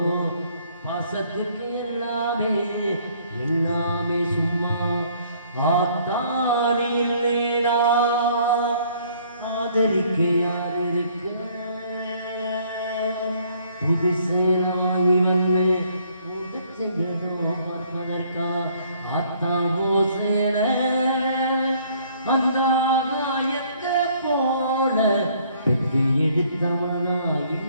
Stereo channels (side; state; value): both; inverted; correlation -0.62